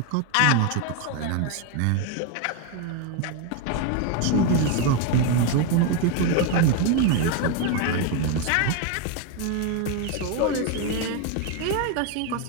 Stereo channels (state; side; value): different; both; correlation 0.02